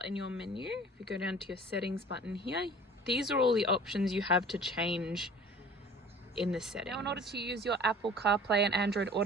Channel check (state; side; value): normal; both; correlation 0.47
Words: in your menu. If you go down to your settings button here, these are all the options you have to change in the settings. Now in order to use your Apple CarPlay and Android